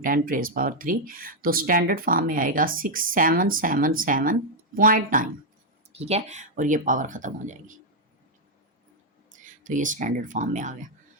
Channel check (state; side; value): normal; both; correlation -0.02